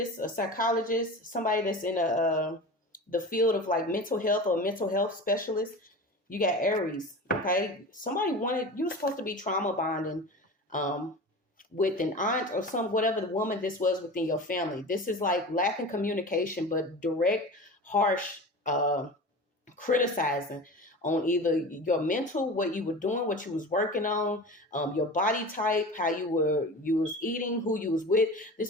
a psychologist, somebody that's in the field of like mental health or mental health specialist. You got Aries, okay? Somebody you were supposed to be trauma bonding with an aunt or whatever the woman this was within your family. This is like lacking communication, but direct, harsh criticizing on either your mental, what you were doing, what you was working on, your body type, how you was eating, who you was with. This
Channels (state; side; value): normal; both; correlation 0.33